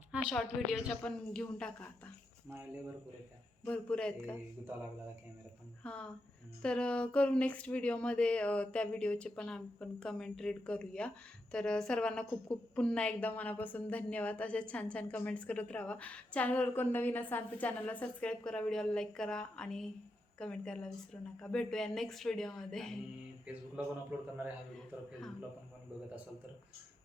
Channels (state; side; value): normal; both; correlation 0.85